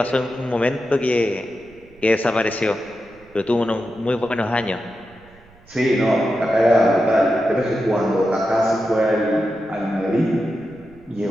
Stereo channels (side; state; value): right; noise; rumble, 27 dB below the sound